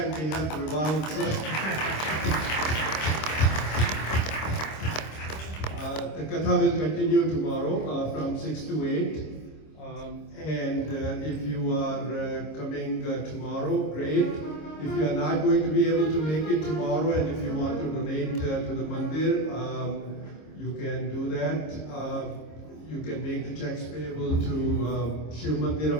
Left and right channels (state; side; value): late; right; 26 ms